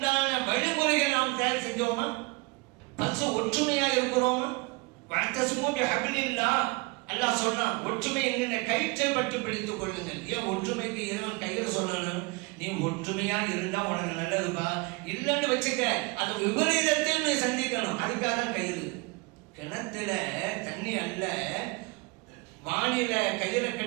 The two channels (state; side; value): quieter; left; 27.2 dB